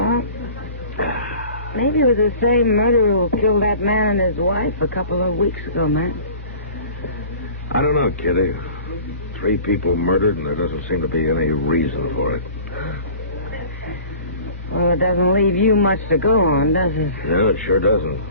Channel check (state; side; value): inverted; both; correlation -0.44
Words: maybe it was the same murderer who killed that man and his wife a couple of weeks ago, man. I don't know, Kitty. 3 people murdered, and there doesn't seem to be any reason for it. Well, it doesn't leave you much to go on, does it? No, it sure doesn't.